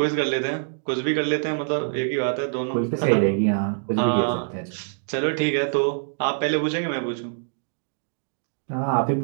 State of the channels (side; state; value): left; silent; digital silence